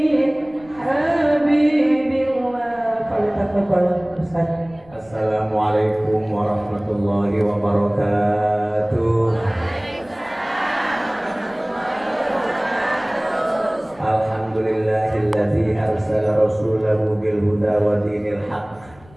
حبيب الله. فلتفضل Ustaz. Assalamualaikum warahmatullahi wabarakatuh. Alhamdulillahilladzi arsala rasulahu bil huda wa dinil haqq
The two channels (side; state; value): left; noise; rumble, 26 dB below the sound